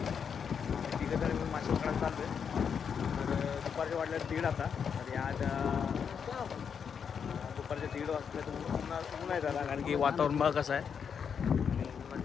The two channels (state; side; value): quieter; right; 7.0 dB